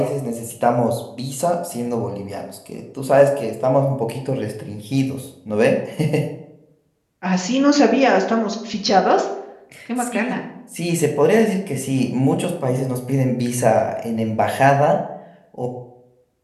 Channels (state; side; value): identical; both; correlation 1.00